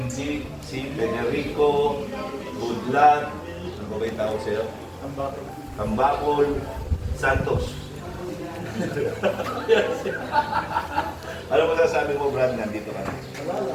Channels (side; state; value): both; identical; correlation 1.00